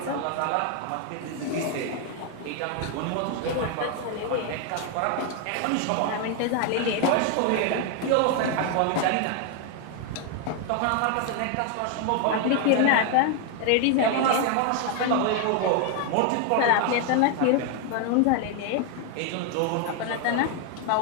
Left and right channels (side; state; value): both; different; correlation 0.01